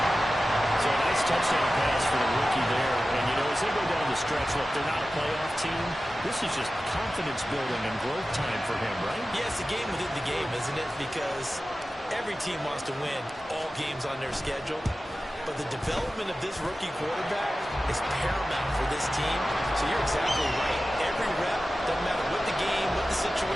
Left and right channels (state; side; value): normal; both; correlation 0.95